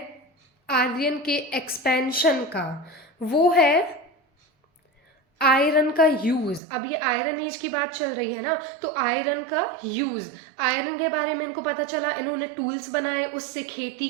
आर्यन के एक्सपेंशन का वो है आयरन का यूज। अब ये आयरन एज की बात चल रही है ना, तो आयरन का यूज, आयरन के बारे में इनको पता चला, इन्होंने टूल्स बनाए, उससे खेती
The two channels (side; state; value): left; drops out; at 6.6 s